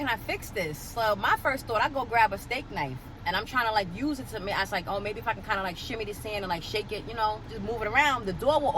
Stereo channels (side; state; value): both; identical; correlation 1.00